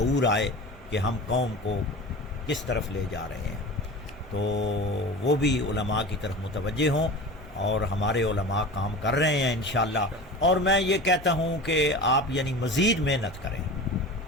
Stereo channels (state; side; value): normal; both; correlation 0.33